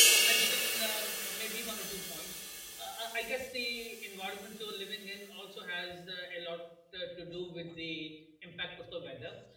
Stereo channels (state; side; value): identical; both; correlation 1.00